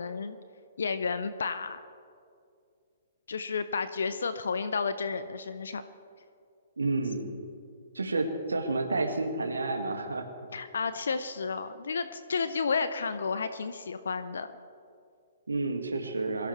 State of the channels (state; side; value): inverted; both; correlation -0.78